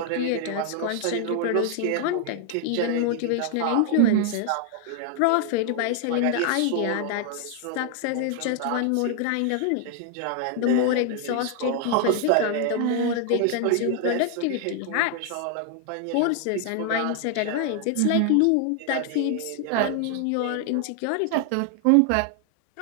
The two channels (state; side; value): different; both; correlation 0.00